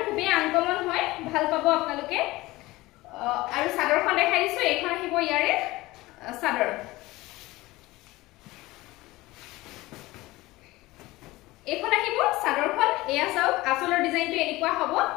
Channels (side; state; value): right; quieter; 19.5 dB